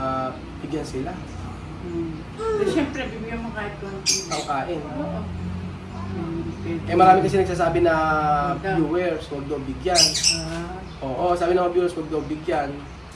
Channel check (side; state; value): both; identical; correlation 1.00